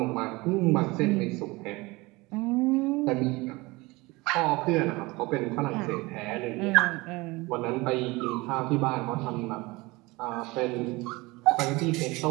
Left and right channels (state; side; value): quieter; left; 22.8 dB